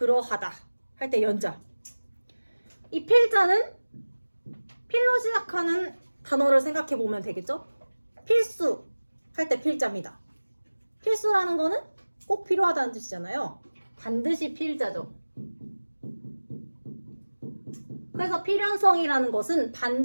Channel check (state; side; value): inverted; both; correlation -1.00